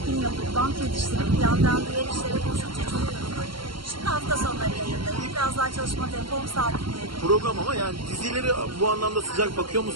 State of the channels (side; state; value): left; late; 0.73 ms